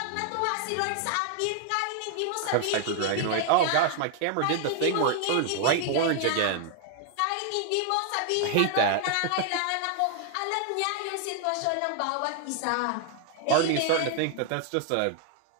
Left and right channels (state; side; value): different; both; correlation 0.00